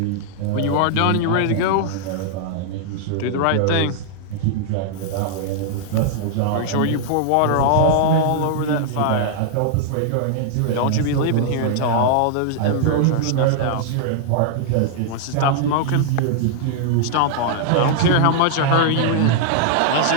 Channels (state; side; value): different; both; correlation -0.01